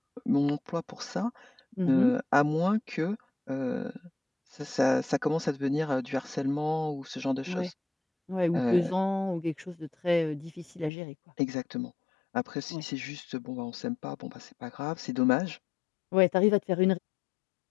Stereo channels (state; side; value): drops out; right; at 10.9 s